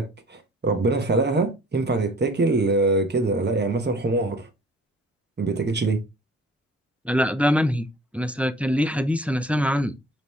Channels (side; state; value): both; normal; correlation 0.49